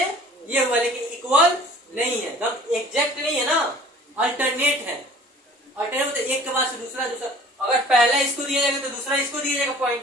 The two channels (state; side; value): normal; both; correlation 0.48